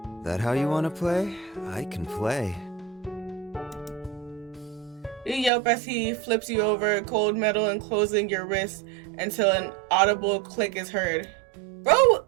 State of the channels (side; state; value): left; drops out; at 5.5 s